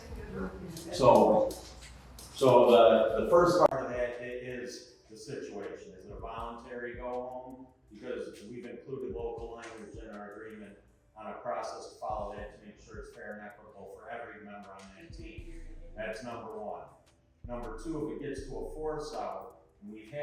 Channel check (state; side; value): identical; both; correlation 1.00